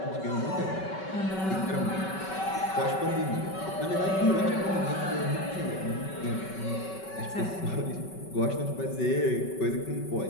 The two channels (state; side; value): late; right; 5.3 ms